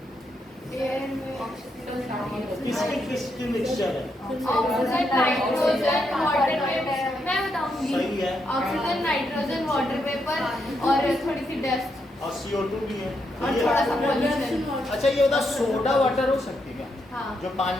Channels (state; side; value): normal; both; correlation 0.80